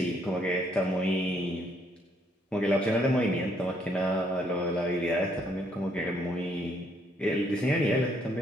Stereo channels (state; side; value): normal; both; correlation 0.70